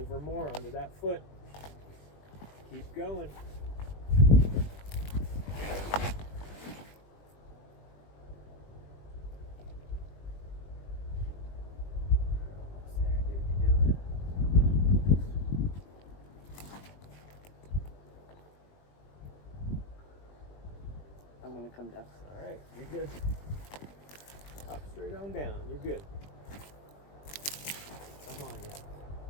more onto that foot. Keep going. I'm gonna come down. All right, you're good. Hop straight on down. You're good. Come on, yeah.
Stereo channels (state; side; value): late; right; 20 ms